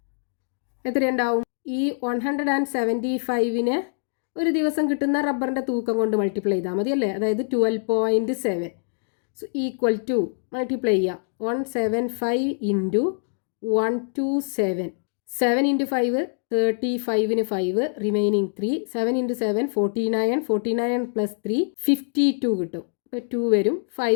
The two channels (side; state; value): right; silent; 59 dB below the other